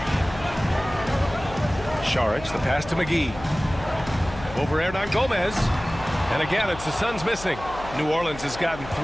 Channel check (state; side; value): noise; left; hum, 13 dB below the sound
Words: Saric, the pass to McGee. Over Hernan Gomez. And again, it's the Suns missing. New Orleans has gotten